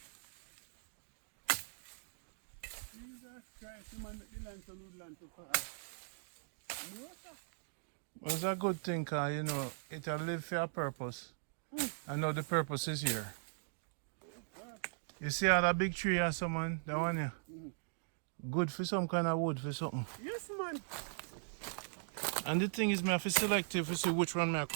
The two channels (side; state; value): left; silent; digital silence